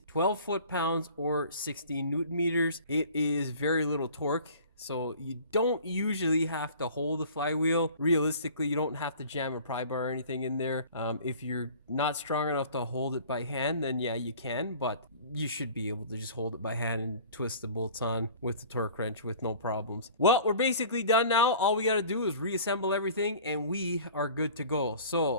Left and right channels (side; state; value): both; inverted; correlation -0.46